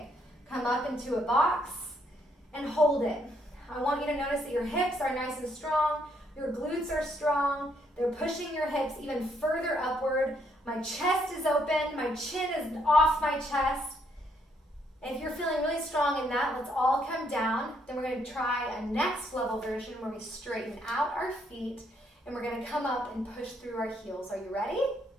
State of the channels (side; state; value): both; normal; correlation 0.72